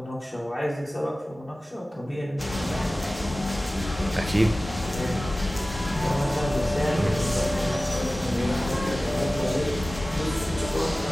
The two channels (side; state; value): both; normal; correlation 0.96